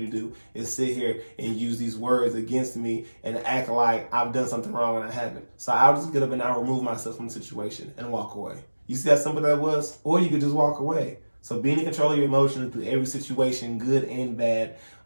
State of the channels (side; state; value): both; inverted; correlation -1.00